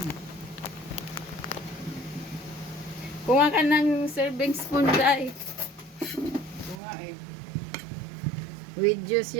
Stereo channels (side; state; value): left; drops out; at 6.8 s